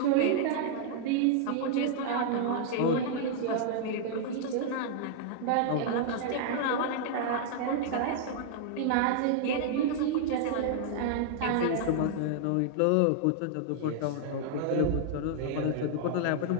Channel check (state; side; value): different; both; correlation -0.01